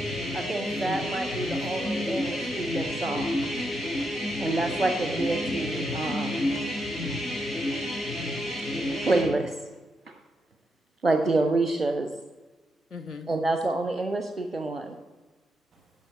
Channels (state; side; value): normal; both; correlation 0.82